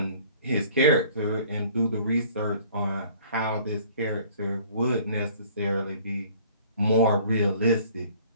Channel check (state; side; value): inverted; both; correlation -0.53